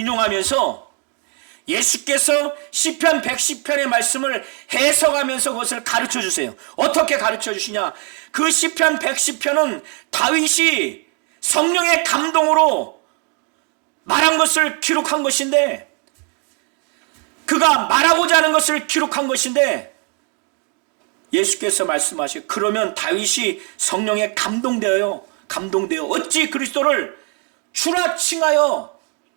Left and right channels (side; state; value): left; quieter; 36.6 dB